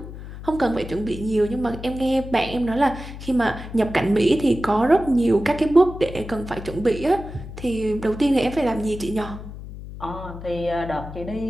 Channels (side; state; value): left; noise; hum, 12 dB below the sound